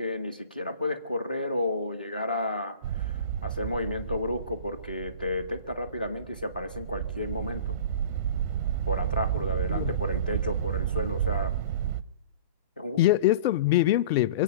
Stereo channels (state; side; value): inverted; both; correlation -0.39